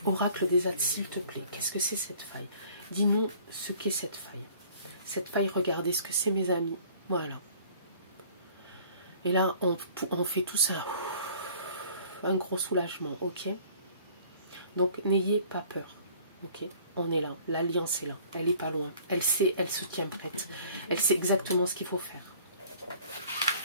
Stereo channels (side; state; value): both; inverted; correlation -0.52